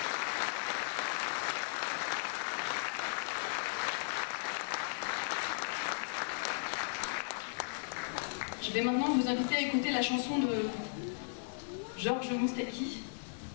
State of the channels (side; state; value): right; silent; digital silence